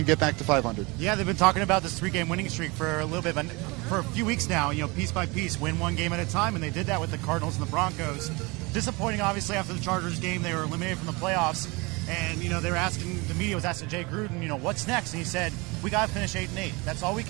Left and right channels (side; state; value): left; quieter; 26.0 dB